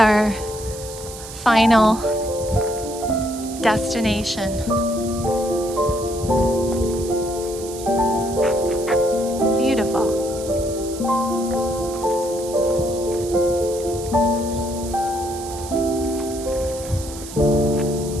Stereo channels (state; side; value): noise; right; hiss, 13 dB below the sound